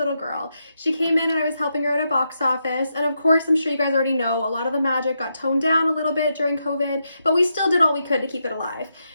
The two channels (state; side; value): inverted; both; correlation -0.83